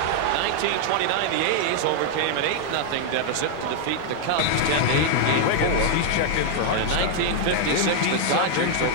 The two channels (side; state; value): both; different; correlation 0.00